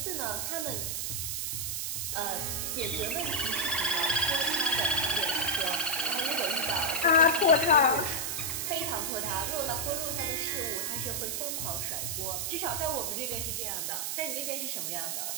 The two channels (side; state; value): right; noise; hiss, 1 dB below the sound